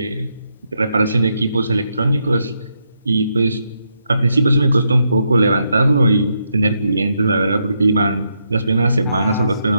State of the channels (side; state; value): both; inverted; correlation -0.80